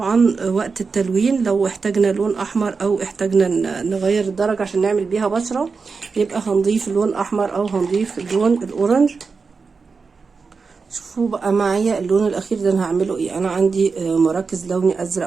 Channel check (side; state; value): left; quieter; 4.8 dB